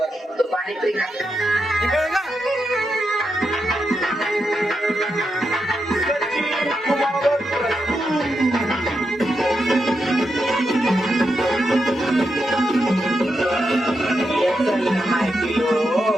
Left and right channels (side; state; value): both; normal; correlation 0.85